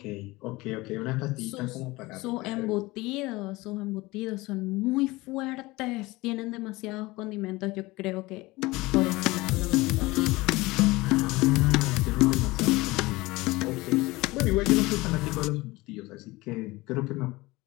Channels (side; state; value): right; quieter; 21.1 dB